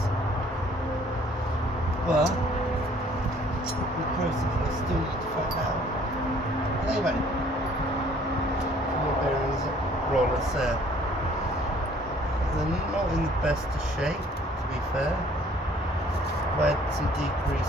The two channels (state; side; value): normal; both; correlation 0.58